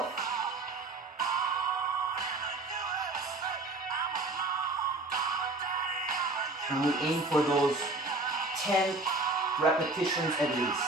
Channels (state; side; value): quieter; left; 3.1 dB